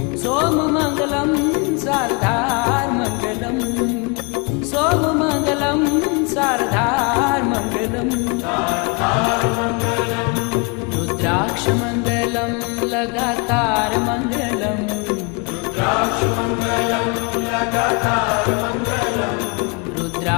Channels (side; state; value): right; quieter; 31.6 dB